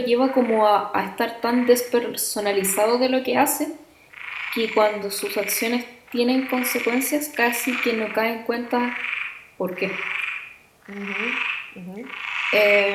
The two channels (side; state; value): both; identical; correlation 1.00